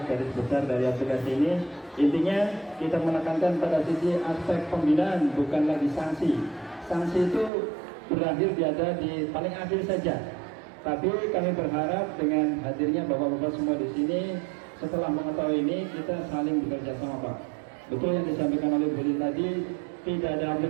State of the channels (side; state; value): left; drops out; at 7.5 s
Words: garis besar dari aplikasi ini. Intinya kita menekankan pada sisi aspek pembinaan, bukan lagi sanksi. Sanksi itu berakhir ada di paling akhir saja. Tapi kami berharap dengan hadirnya bapak-bapak semua di sini, setelah mengetahui ini kita saling bekerja sama Pak. Betul yang disampaikan oleh Bu Lin tadi, tidak ada